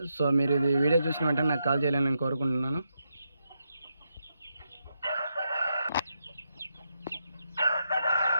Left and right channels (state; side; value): inverted; both; correlation -0.83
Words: సో మీరు ఇది వీడియో చూసిన వెంటనే నాకు కాల్ చేయాలని నేను కోరుకుంటున్నాను.